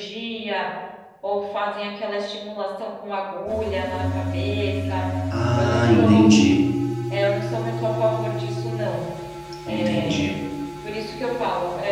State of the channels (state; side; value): identical; both; correlation 1.00